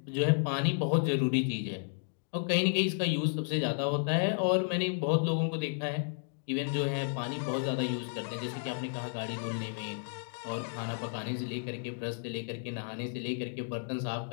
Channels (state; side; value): silent; right; digital silence